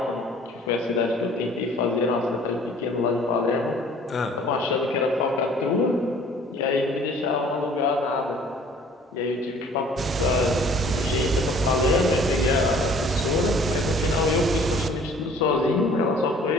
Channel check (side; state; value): both; normal; correlation 0.53